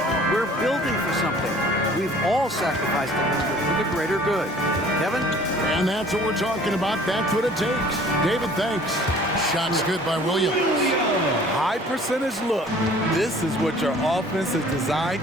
we're building for something. We've all sacrificed a little bit for the greater good. Kevin? And that's what we're talking about. That's what it takes. David, thanks. Shots good by Williams. High percentage look. This is what your offense is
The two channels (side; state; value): both; normal; correlation 0.52